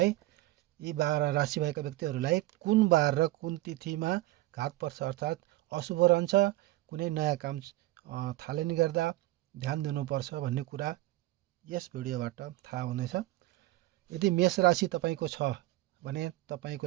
12 राशि भएका व्यक्तिहरूलाई कुन बार र कुन तिथिमा घात पर्छ अर्थात् अशुभ रहन्छ, कुनै नयाँ काम थालनी गर्दा ध्यान दिनुपर्छ भन्ने कुरा यस भिडियोबाट थाहा हुनेछ। यदि मेष राशि तपाईँको छ भने तपाईँको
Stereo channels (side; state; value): left; quieter; 17.8 dB